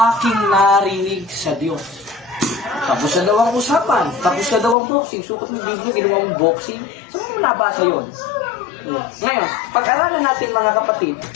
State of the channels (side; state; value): right; drops out; at 4.8 s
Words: narinig sa Diyos. Tapos na daw ang usapan. Tapos na daw ang boxing. Sukat ng Biblia, ginawa mong boxing. Saan mo nabasa yun? Ngayon, pag-aralan natin mga kapatid,